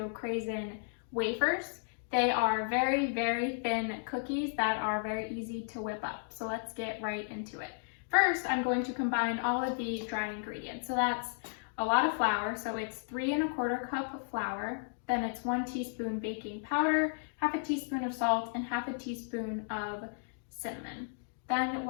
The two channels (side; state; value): right; silent; digital silence